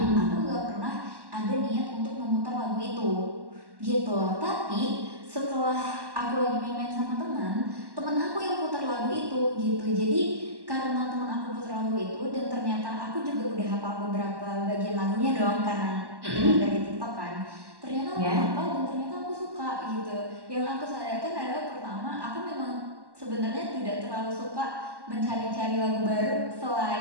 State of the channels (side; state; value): left; late; 1.1 ms